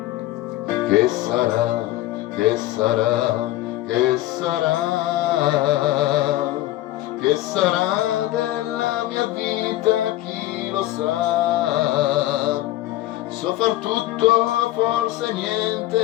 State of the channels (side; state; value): right; quieter; 15.7 dB